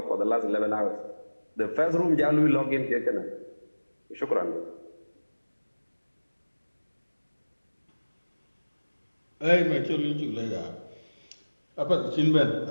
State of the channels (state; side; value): inverted; both; correlation -1.00